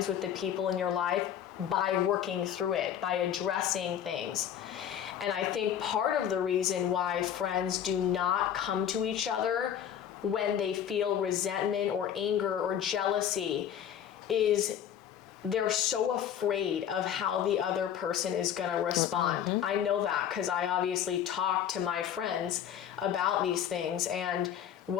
with the people in your life by working through it, by addressing things. And I think part of the reason why friends do not come to each other when they feel resentment or anger or jealousy is they're so afraid of how the other person is going to respond. I know that because I obviously talk to my friends about these things, and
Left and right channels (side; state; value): right; quieter; 9.5 dB